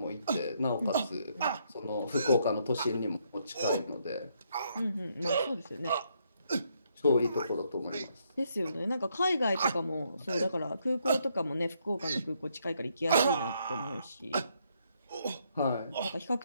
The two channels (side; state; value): both; inverted; correlation -0.74